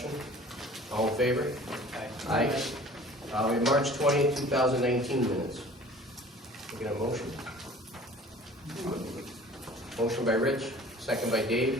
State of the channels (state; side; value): normal; both; correlation 0.46